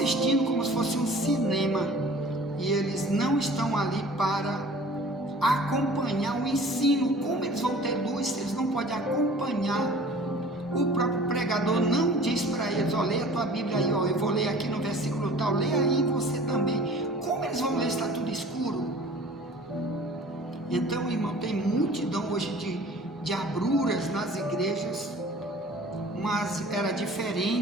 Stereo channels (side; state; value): both; normal; correlation 0.46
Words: como se fosse um cinema, e eles não estão ali para acompanhar o ensino. Como eles vão ter luz se eles não podem acompanhar? O próprio pregador não diz para eles: ó, leia a tua Bíblia aí, ó, eu vou ler aqui no versículo tal, leia aí você também. Como eles vão ler se está tudo escuro? Então, irmão, tem multidão hoje de abruras nas igrejas, mas era